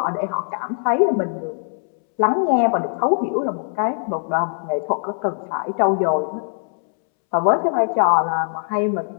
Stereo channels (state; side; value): silent; right; 65 dB below the other